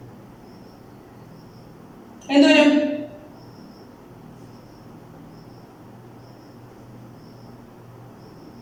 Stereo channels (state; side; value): identical; both; correlation 1.00